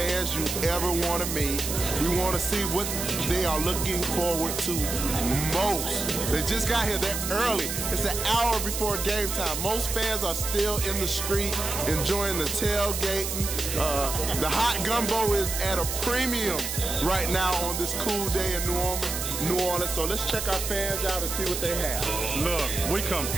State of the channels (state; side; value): noise; right; hiss, 4 dB below the sound